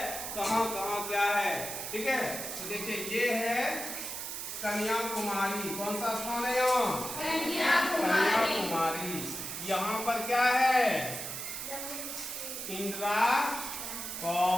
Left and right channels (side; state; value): right; noise; hiss, 6 dB below the sound